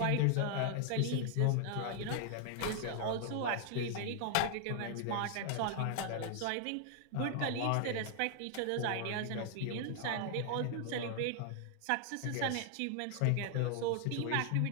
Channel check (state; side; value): different; both; correlation 0.00